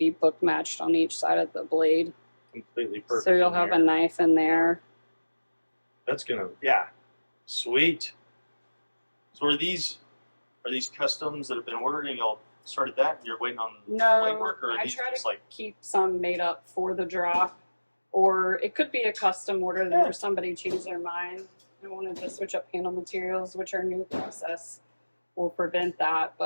book matched on each side of the blade. completely perfect. So you'll have a knife in there. That's gonna sweet. So are these customs that have been ordered and y'all started that? You're waiting on No, blade work, or are I these try just to like keep some made up for the drop, or it could be a custom order where somebody changed their mind and wanted to switch up handle materials, which our new process will prevent that.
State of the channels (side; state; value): both; inverted; correlation -1.00